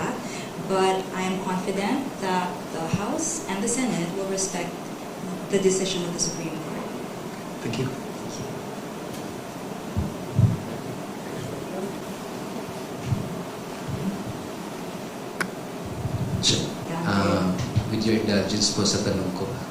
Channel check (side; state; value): both; identical; correlation 1.00